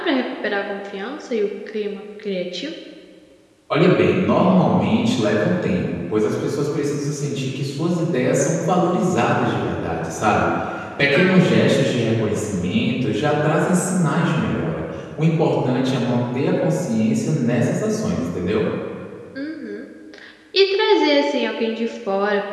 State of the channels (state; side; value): identical; both; correlation 1.00